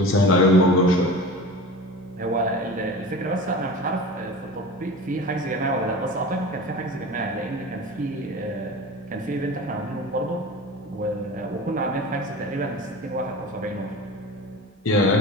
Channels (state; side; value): normal; both; correlation 0.34